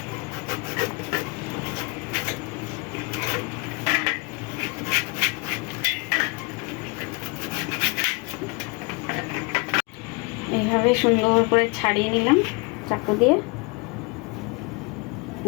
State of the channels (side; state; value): right; quieter; 29.7 dB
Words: এইভাবে সুন্দর করে ছাড়িয়ে নিলাম চাকু দিয়ে,